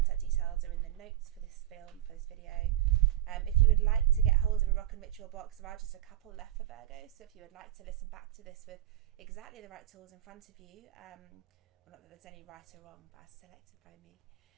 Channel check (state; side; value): quieter; left; 13.1 dB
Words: details are in the notes for this video. If you would like to get hold of a rock and ritual box, there are just a couple left for Virgo, so if you would like to listen back to this with exactly the right tools in front of you, well, not that there's any right or wrong, but as selected by me,